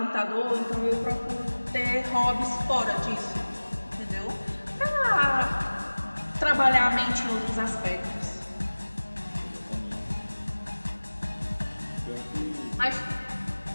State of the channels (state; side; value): inverted; both; correlation -1.00